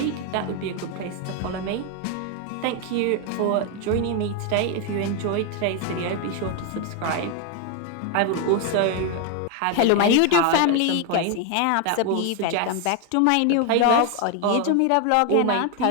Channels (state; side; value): different; both; correlation 0.01